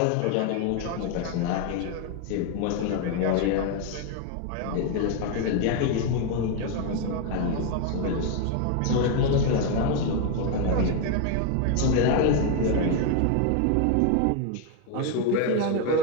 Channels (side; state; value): both; different; correlation 0.01